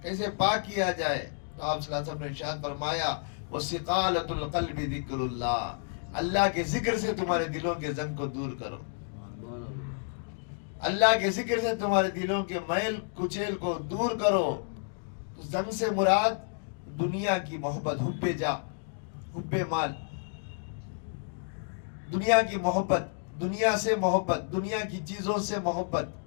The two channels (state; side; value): silent; right; digital silence